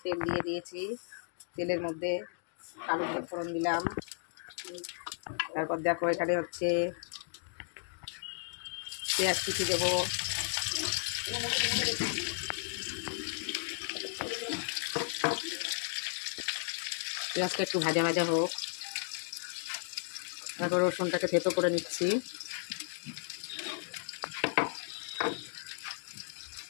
তেল দিয়ে দিয়েছি, তেলের মধ্যে কালো জিরে ফোড়ন দিলাম। তারপর দেখো এখানে হচ্ছে পেঁয়াজ কুচি দেবো। পেঁয়াজটা একটু ভাজা ভাজা হোক। তারপর রসুনটাকে থেতো করে নিচ্ছি।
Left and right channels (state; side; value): silent; right; digital silence